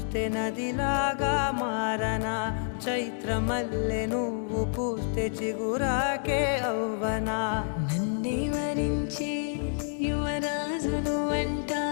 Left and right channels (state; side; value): silent; right; digital silence